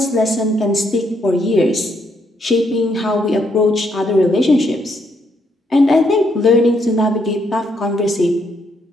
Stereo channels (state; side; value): normal; both; correlation 0.74